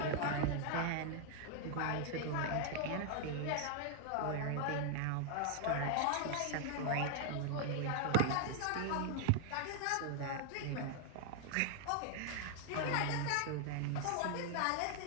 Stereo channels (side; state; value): both; different; correlation 0.00